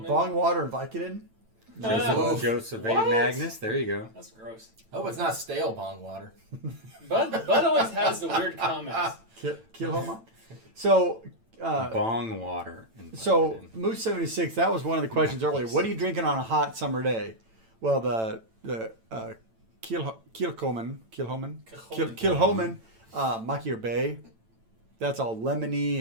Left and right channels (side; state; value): left; late; 9.0 ms